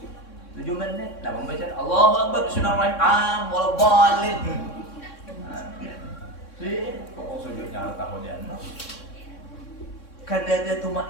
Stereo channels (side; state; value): right; late; 3.6 ms